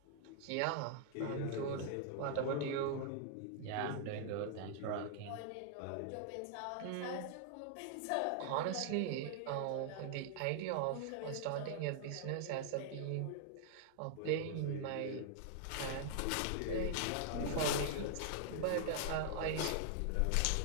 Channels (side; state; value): both; different; correlation -0.01